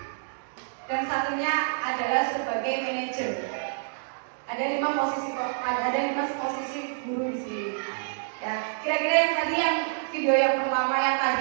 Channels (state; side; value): silent; left; digital silence